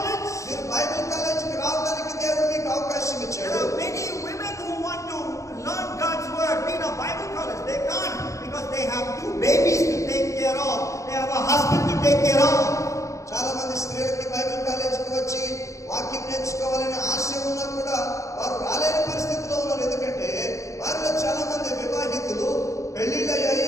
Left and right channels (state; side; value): late; right; 0.15 ms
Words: మీరు బైబిల్ కాలేజీకి రావడానికి దేవుడు మీకు అవకాశం There ఇచ్చాడు. are many women who want to learn God's word, be in a Bible college. They can't because they have 2 babies to take care of. They have a husband to take care of. చాలా మంది స్త్రీలకి Bible కాలేజీకి వచ్చి వాక్యం నేర్చుకోవాలనే ఆశ ఉన్నా కూడా వారు రాలేని పరిస్థితిలో ఉన్నారు. ఎందుకంటే వారిలో చాలా మంది వివాహితులు,